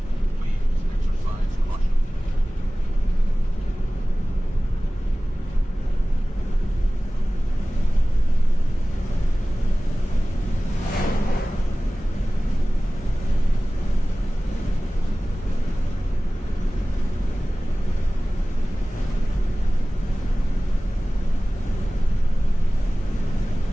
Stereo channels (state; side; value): normal; both; correlation 0.98